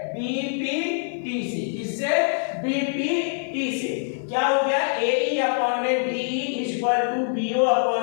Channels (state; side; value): silent; right; 55 dB below the other